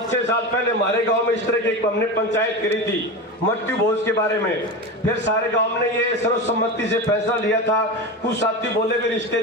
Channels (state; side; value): normal; both; correlation 0.23